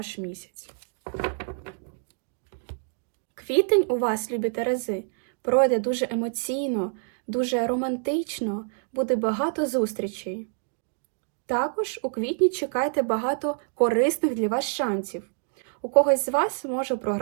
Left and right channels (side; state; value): left; silent; 56 dB below the other